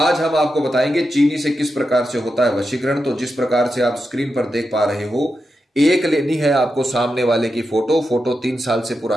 हम आपको बताएंगे चीनी से किस प्रकार से होता है वशीकरण। तो जिस प्रकार से आप स्क्रीन पर देख पा रहे हो, एक लेनी है आपको सामने वाले की फोटो 3 साल से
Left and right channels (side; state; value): both; normal; correlation 0.88